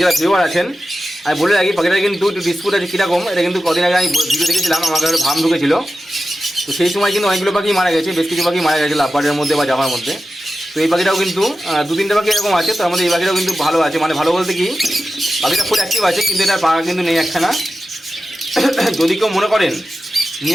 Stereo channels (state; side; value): normal; both; correlation 0.93